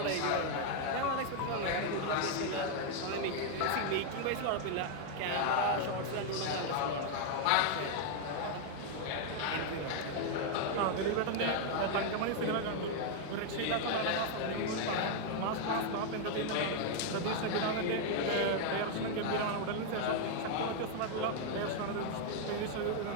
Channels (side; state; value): both; different; correlation 0.00